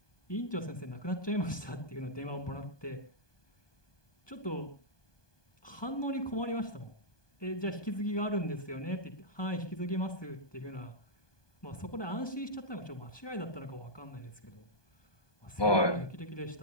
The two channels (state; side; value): late; right; 1.2 ms